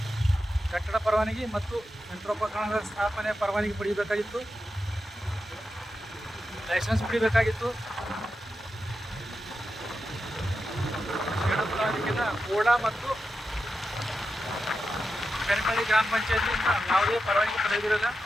ಕಟ್ಟಡ ಪರವಾನಗಿ ಮತ್ತು ಯಂತ್ರೋಪಕರಣಗಳ ಸ್ಥಾಪನೆ ಪರವಾನಗಿ ಪಡೆಯಬೇಕಾಗಿತ್ತು, ಲೈಸೆನ್ಸ್ ಪಡಿಬೇಕಾಗಿತ್ತು. ಸೇಡಂ ತಾಲೂಕಿನ ಕೋಳ ಮತ್ತು ಬೆರಕಳಿ ಗ್ರಾಮ ಪಂಚಾಯತಿಯಿಂದ ಯಾವುದೇ ಪರವಾನಗಿ ಪಡೆದಿರೋಲ್ಲ.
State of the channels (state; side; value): normal; both; correlation 0.89